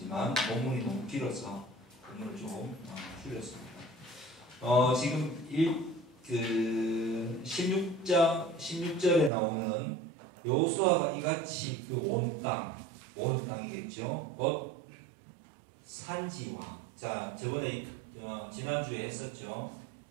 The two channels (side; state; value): left; drops out; at 9.3 s